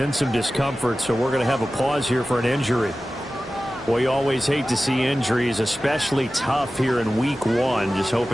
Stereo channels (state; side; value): noise; right; hum, 27 dB below the sound